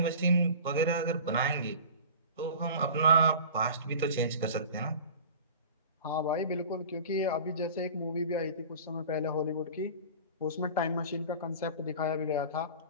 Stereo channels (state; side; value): inverted; both; correlation -0.39